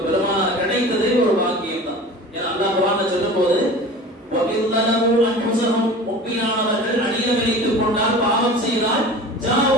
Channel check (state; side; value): normal; both; correlation 0.38